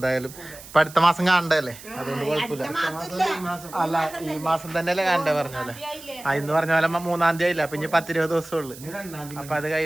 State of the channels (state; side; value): noise; right; hiss, 17 dB below the sound